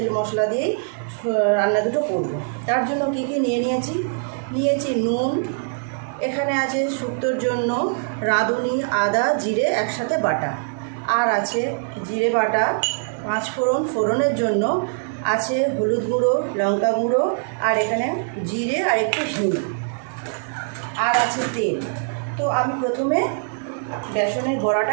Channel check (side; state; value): left; silent; digital silence